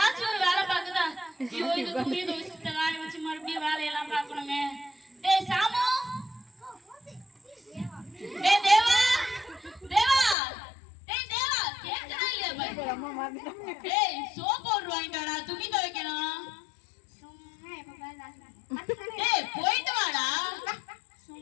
ஒரு வேலை பார்க்குதா? ஐயோ இது துணி துவைச்சிட்டு காய வச்சு மறுபடியும் வேலையெல்லாம் பார்க்கணுமே. டேய் சாமு, டேய் தேவா, தேவா, டேய் தேவா, கேக்குதா இல்லையா பாரு? டேய் சோப் பவுடர் வாங்கிட்டு வாடா, துணி துவைக்கணும். டேய் போயிட்டு வாடா.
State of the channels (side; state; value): right; drops out; at 10.4 s